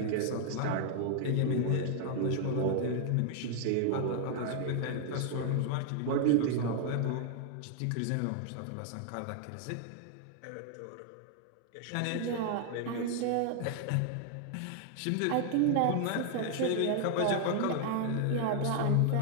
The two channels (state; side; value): different; both; correlation 0.00